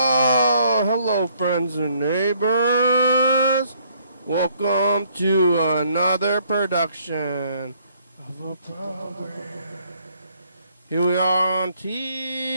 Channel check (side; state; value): both; inverted; correlation -0.65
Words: hello, friends and neighbors. Welcome to another production of a program. Here we are on